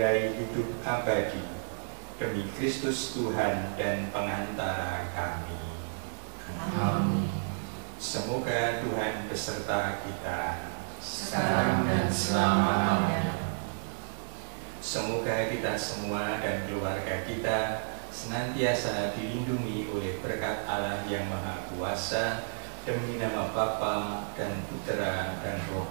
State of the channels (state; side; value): silent; left; digital silence